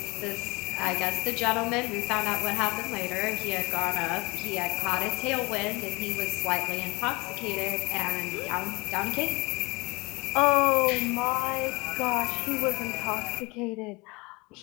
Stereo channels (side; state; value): right; quieter; 25.4 dB